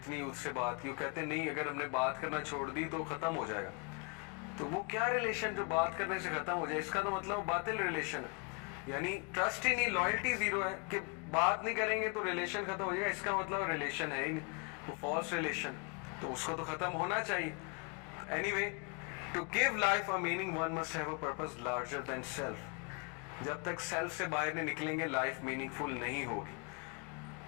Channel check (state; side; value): quieter; right; 33.0 dB